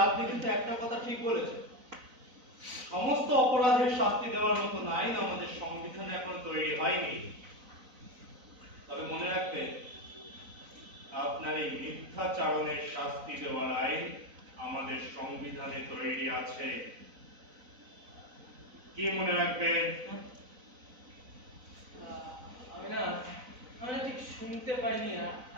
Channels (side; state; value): left; late; 4.0 ms